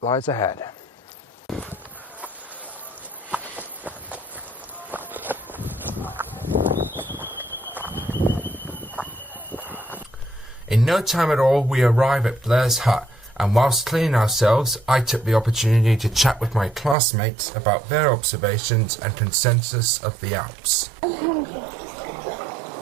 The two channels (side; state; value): left; drops out; at 16.9 s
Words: lies ahead. In no time at all, we arrive at Blair's hut, and whilst cleaning ourselves, I took the opportunity to chat with my classmates about their observations and consensus of the Alps.